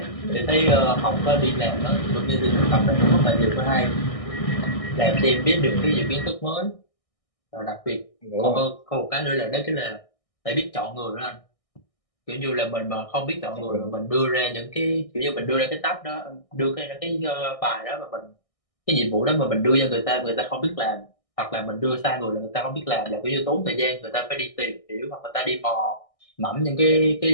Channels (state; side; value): late; right; 1.6 ms